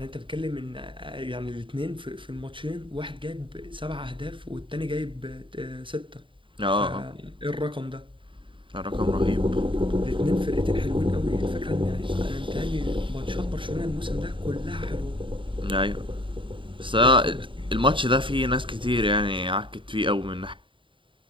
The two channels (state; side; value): late; left; 0.25 ms